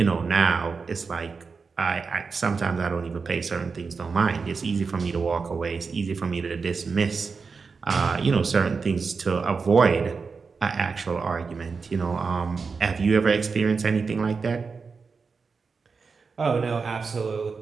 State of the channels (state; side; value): quieter; left; 5.0 dB